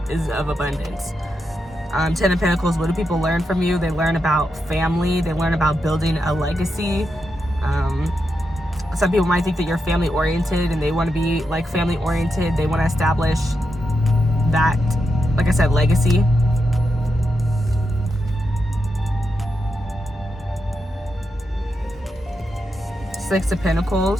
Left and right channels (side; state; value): both; normal; correlation 0.86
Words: of abundance. 10 of Pentacles, what do people learn from you? They learn about family. They learn about building a legacy. Some people might think that you're family oriented and they want to be like family oriented. They want to establish that, like I said, legacy. Six of